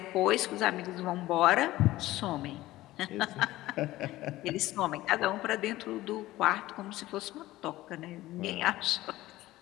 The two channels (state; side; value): quieter; right; 16.7 dB